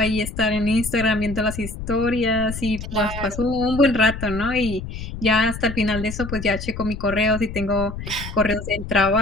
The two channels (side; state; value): left; noise; rumble, 8 dB below the sound